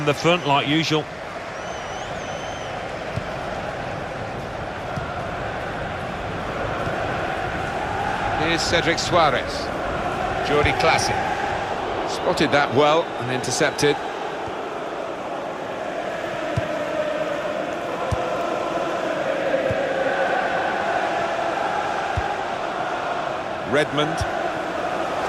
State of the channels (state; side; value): identical; both; correlation 1.00